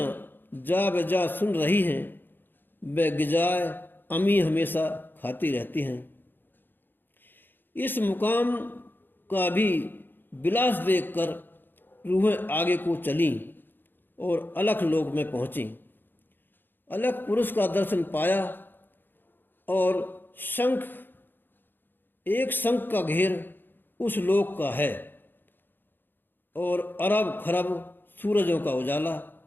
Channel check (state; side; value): late; right; 0.095 ms